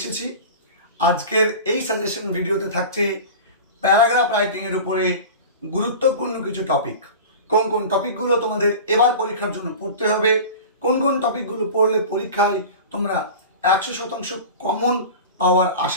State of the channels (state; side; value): inverted; both; correlation -0.34